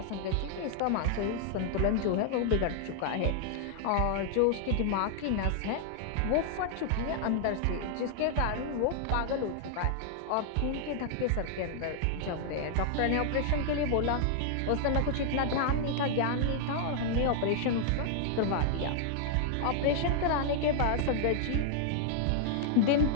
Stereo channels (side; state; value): both; different; correlation 0.00